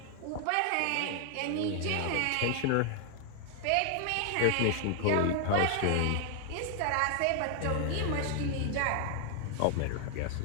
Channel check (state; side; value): different; both; correlation 0.00